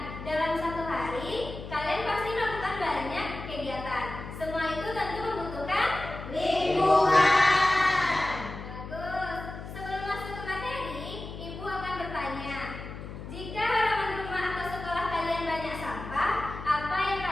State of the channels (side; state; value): left; noise; hum, 10 dB below the sound